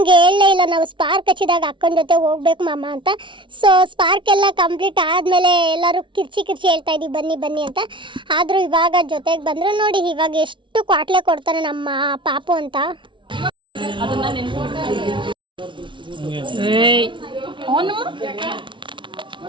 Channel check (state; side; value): late; left; 0.24 ms